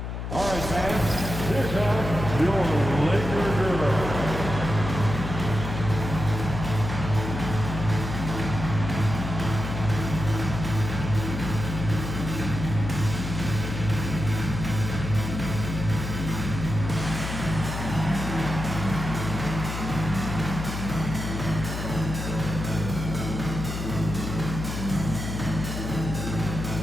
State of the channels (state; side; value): noise; left; hum, 5 dB below the sound